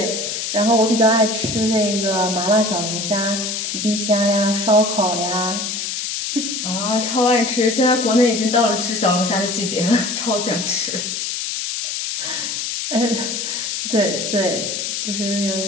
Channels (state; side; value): noise; left; hiss, 3 dB below the sound